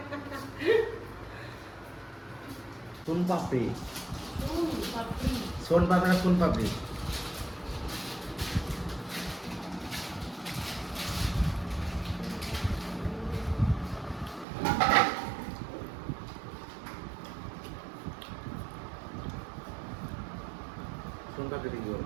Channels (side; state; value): left; drops out; at 14.5 s